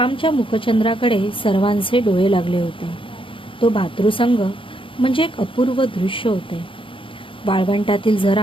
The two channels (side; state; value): right; late; 0.25 ms